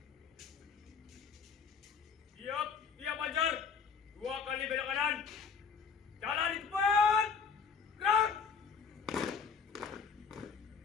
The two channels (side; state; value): right; quieter; 6.0 dB